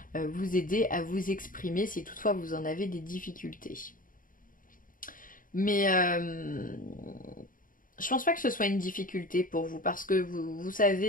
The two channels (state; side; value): late; right; 0.40 ms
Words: vous aider à vous exprimer si toutefois vous en avez des difficultés. Mais Je pense pas que ce soit une difficulté pour vous parce que vous